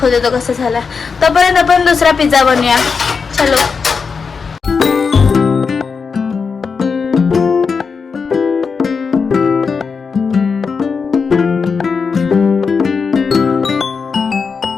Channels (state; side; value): quieter; right; 5.4 dB